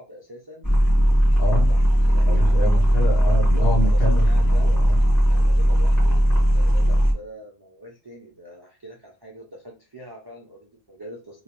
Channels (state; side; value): normal; both; correlation 0.94